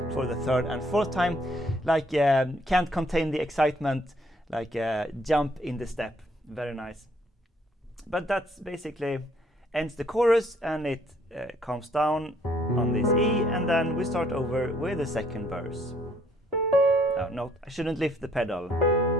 For the third and fourth time, like can't contain the excitement, like jump in the step. Very nice. But that's basically ends the chorus, and it comes down on this E, and then we start over with the second verse. Oh, no, I shouldn't lift the pedal.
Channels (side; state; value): both; normal; correlation 0.65